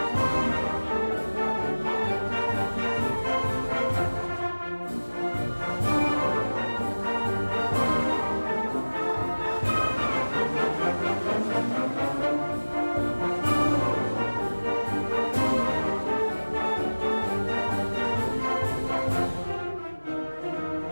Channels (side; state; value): both; inverted; correlation -1.00